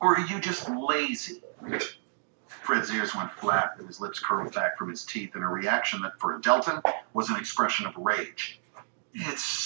Or are you just lazy? Fred's ears went flat and his lips curled back from his teeth in a reaction that, for a Deltan, was an expression of rage. It's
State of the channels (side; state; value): left; silent; digital silence